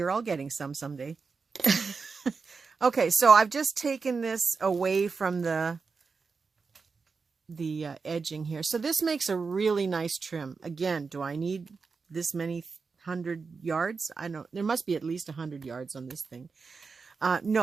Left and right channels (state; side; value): quieter; left; 4.8 dB